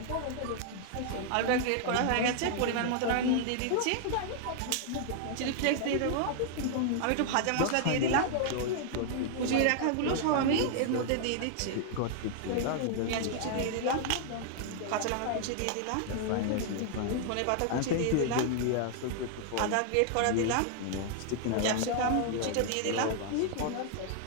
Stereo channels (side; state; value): both; different; correlation 0.00